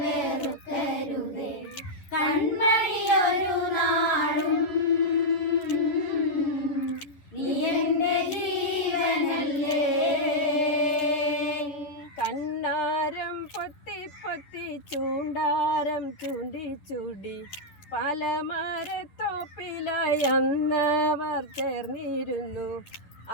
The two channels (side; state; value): right; late; 10 ms